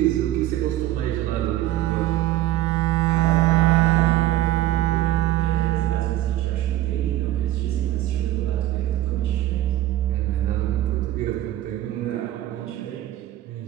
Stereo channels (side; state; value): left; quieter; 14.4 dB